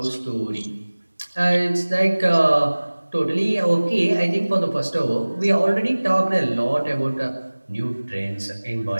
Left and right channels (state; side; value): inverted; both; correlation -1.00